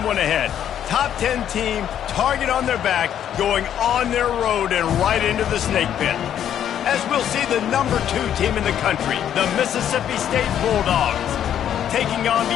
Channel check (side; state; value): right; quieter; 10.0 dB